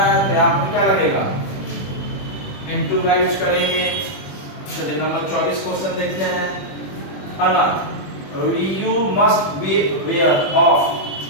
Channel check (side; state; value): right; late; 21 ms